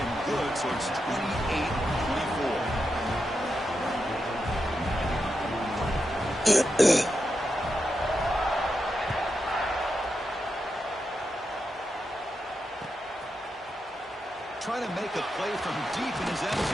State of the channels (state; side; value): normal; both; correlation 0.86